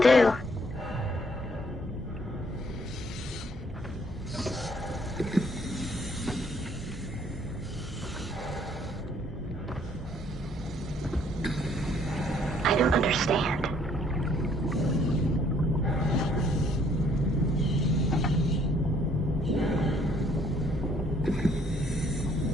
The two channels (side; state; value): both; normal; correlation 0.64